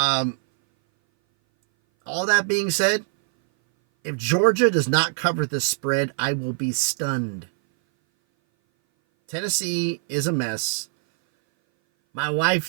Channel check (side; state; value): left; silent; 59 dB below the other